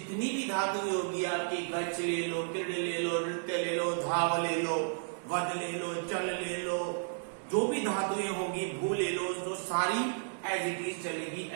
भी धातुएं होगी आपकी, गच ले लो, किड़ ले लो, नृत्य ले लो, धाव ले लो, वद ले लो, चल ले लो, जो भी धातुएं होगी, भू ले लो, तो सारी एज इट इज चलेगी।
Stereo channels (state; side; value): silent; left; 56 dB below the other